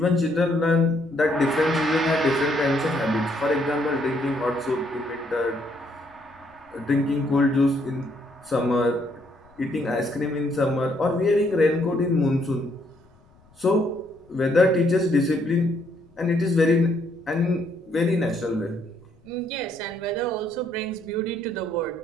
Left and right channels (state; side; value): noise; left; rumble, 30 dB below the sound